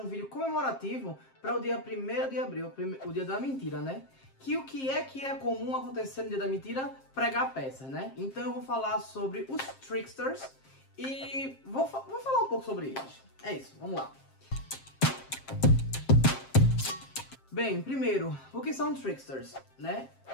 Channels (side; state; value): right; late; 7.5 ms